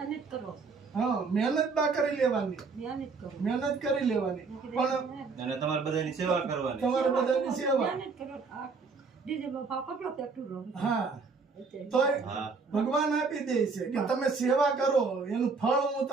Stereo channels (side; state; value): left; quieter; 4.6 dB